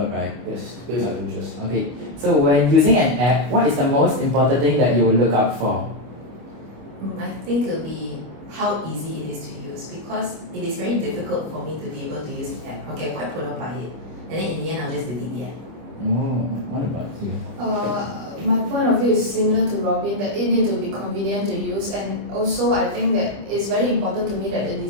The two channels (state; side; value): late; left; 25 ms